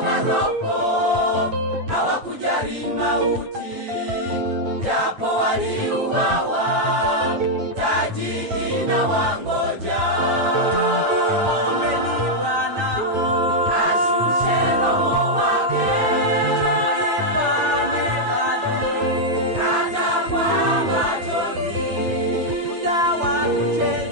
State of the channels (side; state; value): left; late; 8.9 ms